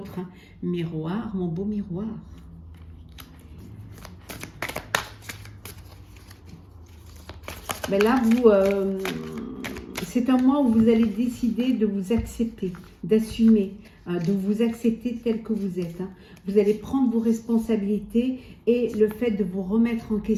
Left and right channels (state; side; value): identical; both; correlation 1.00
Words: Miroir, mon beau miroir. Ben là, c'est un mois où vous allez décider de vous accepter, d'assumer, de vous accepter tel que vous êtes. Hein. Vous allez prendre vos responsabilités et le fait de vous remettre en